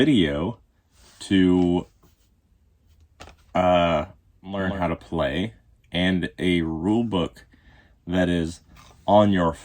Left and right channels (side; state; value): both; identical; correlation 1.00